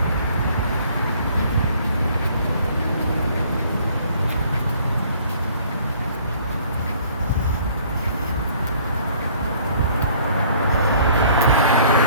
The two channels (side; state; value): both; inverted; correlation -0.57